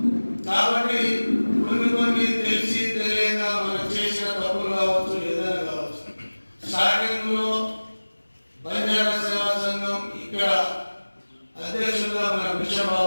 కాబట్టి కొన్ని తెలిసి తెలియక మనం చేసిన తప్పులు కావచ్చు, ఏదైనా కావచ్చు. స్టార్టింగ్ లో బంజారా సేవా సంఘం ఇక్కడ అధ్యక్షులుగా మన భిక్షం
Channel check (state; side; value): inverted; both; correlation -1.00